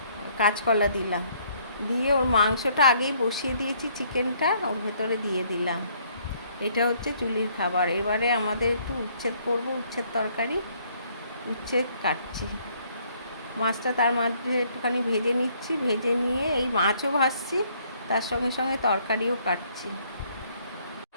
কাঁচকলা দিলাম, দিয়ে ওর মাংসটা আগেই বসিয়ে দিয়েছি, চিকেনটা ওর ভেতরে দিয়ে দিলাম। এটা হচ্ছে জুলির খাবার। এবারে আমাদের একটু উচ্ছেদ করব, উচ্ছেদ তরকারি। উচ্ছেদ কাটছি, মাছটা তার মাঝে একটুখানি ভেজে নিচ্ছি। ভেজে নিয়ে এই মাছও ভাজছি, তার সঙ্গে সঙ্গে তরকারিও কাটছি।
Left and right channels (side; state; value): both; inverted; correlation -0.65